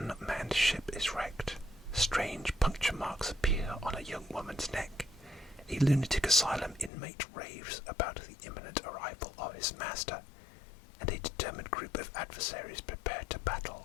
ship is wrecked. Strange puncture marks appear on a young woman's neck. A lunatic asylum inmate raves about the imminent arrival of his master, and a determined group of adversaries prepare to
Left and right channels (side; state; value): right; drops out; at 6.9 s